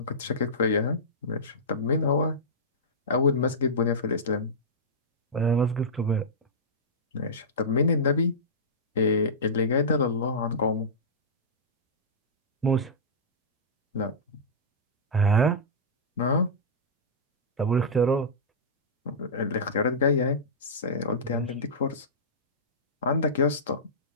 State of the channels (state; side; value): normal; both; correlation -0.14